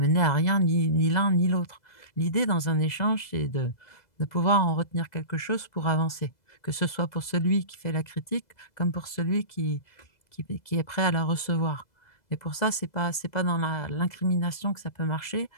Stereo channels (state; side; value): late; right; 2.0 ms